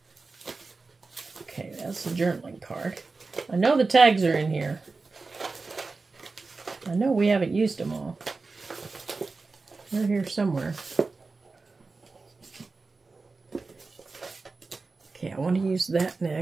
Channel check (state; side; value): quieter; left; 3.9 dB